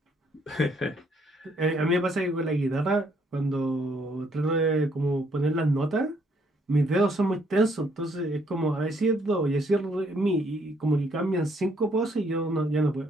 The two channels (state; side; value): normal; both; correlation 0.69